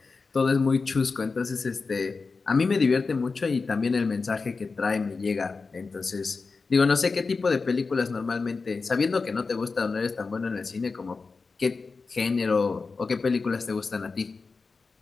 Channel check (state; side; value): quieter; right; 4.4 dB